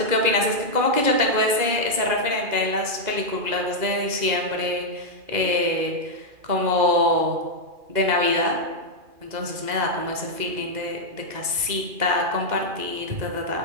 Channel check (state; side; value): late; left; 2.4 ms